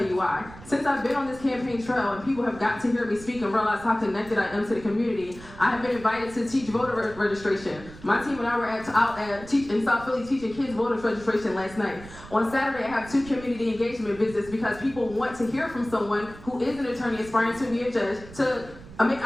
you why. Since I've been on this campaign trail and people have got to hear me speak and realize how connected I am to the community, I have been invited to teach voter registration. My team and I were out in South Philly teaching kids voter registration last night. On Saturday, I have 2 community engagement visits because people want to hear from someone who is an attorney aspiring to be a judge to make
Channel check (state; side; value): noise; right; rumble, 17 dB below the sound